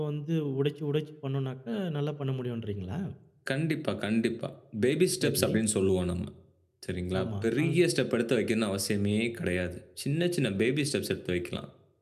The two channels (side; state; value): both; identical; correlation 1.00